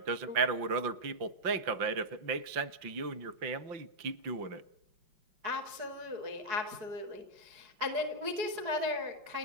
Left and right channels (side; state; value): left; late; 4.8 ms